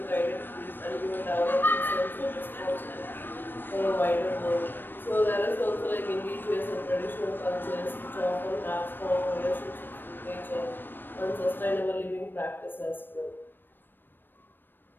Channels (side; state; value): right; late; 0.094 ms